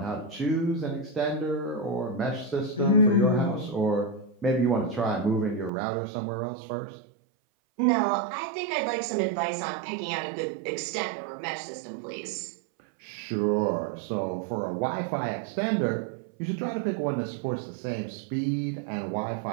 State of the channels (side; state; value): left; drops out; at 5.7 s